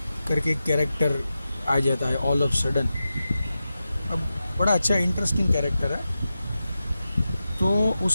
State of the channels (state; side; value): inverted; both; correlation -0.92